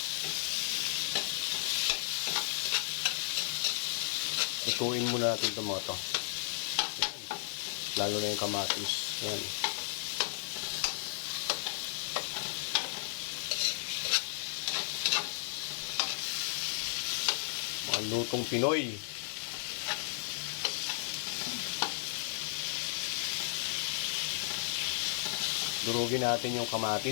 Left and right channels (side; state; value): right; silent; digital silence